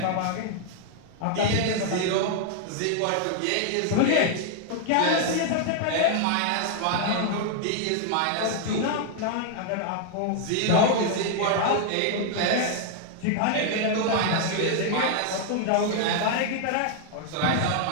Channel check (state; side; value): different; both; correlation 0.00